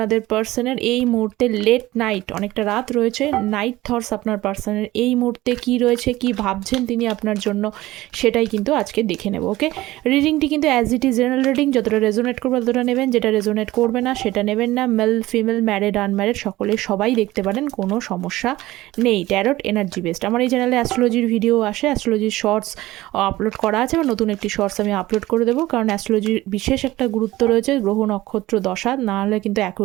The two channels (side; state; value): left; quieter; 17.4 dB